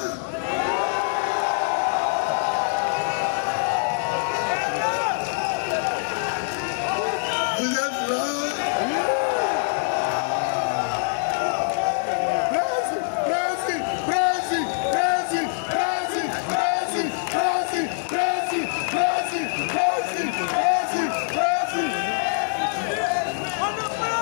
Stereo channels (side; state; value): right; silent; 55 dB below the other